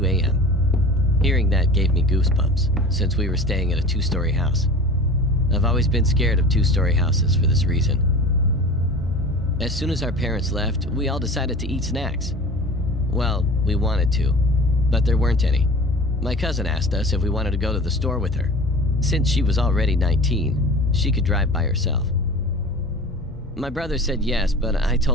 a.m. Hearing that gave me goosebumps, since we were staying at a 2-story house. I've always been scared of 2-story houses for this reason. As soon as our parents left, we all decided to eat snacks. Well, we wanted to, but there weren't any. My cousin asked us if we wanted to go to the store with her. Since she was already 19, she could drive by herself. My brother said yes, but I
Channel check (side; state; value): both; normal; correlation 0.38